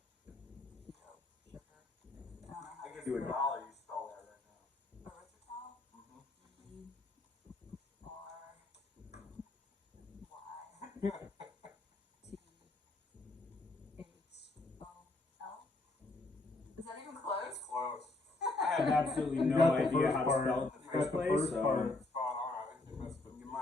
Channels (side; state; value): right; quieter; 3.0 dB